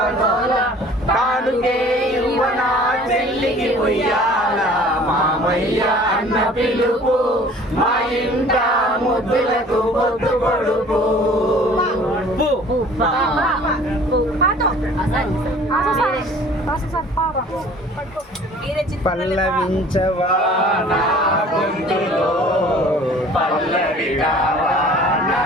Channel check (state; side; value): normal; both; correlation 0.49